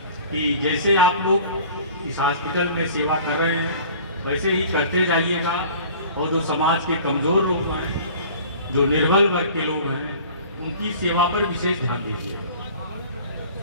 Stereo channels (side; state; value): both; inverted; correlation -0.46